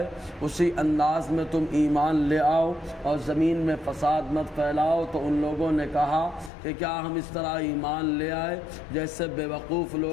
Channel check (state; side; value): drops out; right; at 6.5 s